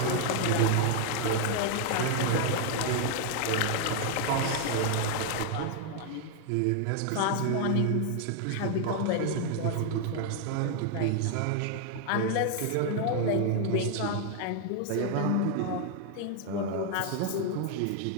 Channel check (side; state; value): both; different; correlation 0.00